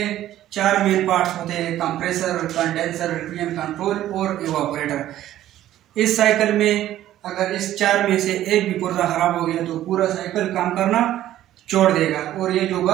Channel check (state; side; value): quieter; left; 13.1 dB